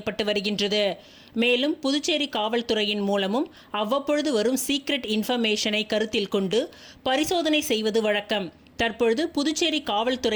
வருகின்றது. மேலும் புதுச்சேரி காவல்துறையின் மூலமும் அவ்வப்பொழுது வரும் சீக்ரெட் இன்ஃபர்மேஷனை கருத்தில் கொண்டு பரிசோதனை செய்வது வழக்கம். தற்பொழுது புதுச்சேரி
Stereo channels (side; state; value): both; identical; correlation 1.00